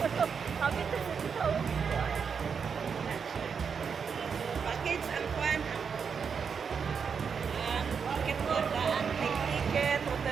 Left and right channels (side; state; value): left; quieter; 6.3 dB